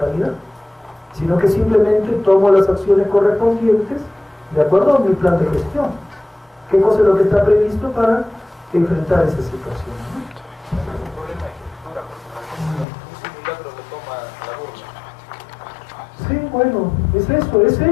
sino que simplemente tomo las acciones correspondientes de acuerdo a mi plan de gestión. ¿Qué cosa es lo que está previsto para enfrentar esa situación? Un problema de estructura, porque un simulacro lo toma la burla. Sí, bueno, es eso,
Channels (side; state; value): right; drops out; at 12.9 s